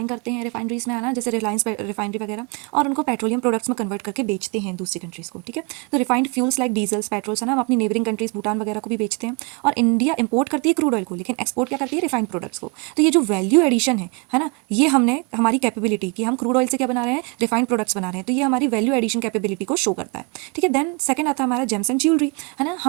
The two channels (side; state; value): left; quieter; 29.9 dB